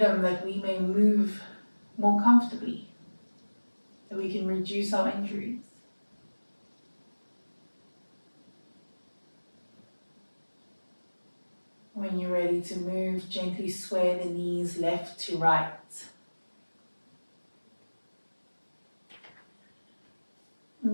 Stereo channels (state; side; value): inverted; both; correlation -1.00